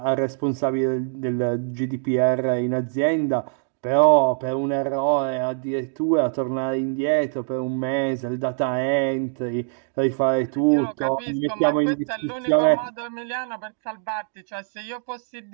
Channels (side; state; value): left; silent; digital silence